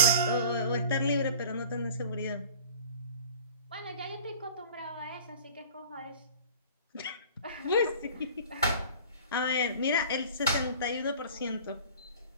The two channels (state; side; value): inverted; both; correlation -0.43